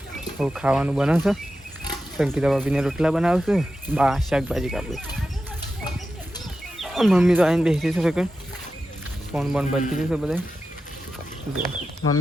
હવે ખાવાનું બનાવશે સંગીતા ભાભીને રોટલા બનાવશે બા શાકભાજી કાપે મમ્મી તો આવીને બેસી છે સેકન્ડ ફોન બોન બનતી જશે બધા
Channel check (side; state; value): both; normal; correlation 0.91